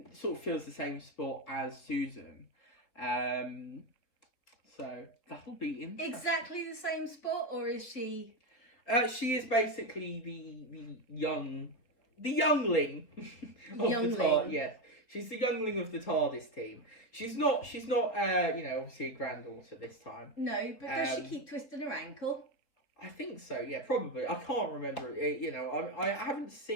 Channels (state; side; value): late; right; 4.0 ms